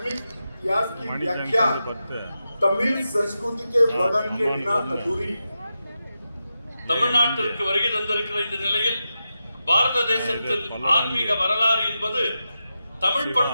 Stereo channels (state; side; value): inverted; both; correlation -0.90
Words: इतिहास की व्याख्या तमिल संस्कृति के वर्णन के बिना अधूरी. தமிழ்நாட்டிற்கு வருகை தந்திருக்கிற இந்த நிலையில் பாரத தேசத்தின் ஆன்மீக வரலாறு என்பது தமிழ்